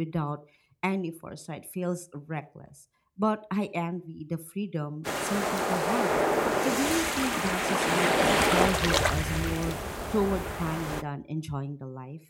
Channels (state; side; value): identical; both; correlation 1.00